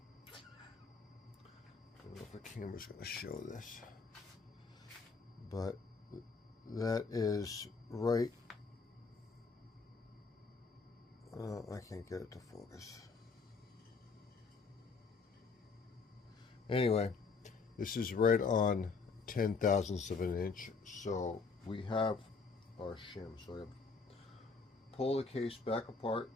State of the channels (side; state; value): right; quieter; 4.6 dB